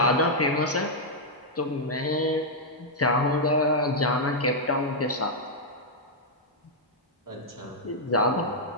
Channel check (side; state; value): both; normal; correlation -0.05